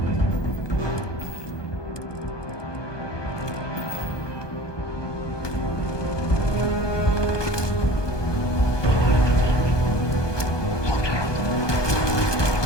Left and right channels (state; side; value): late; right; 1.2 ms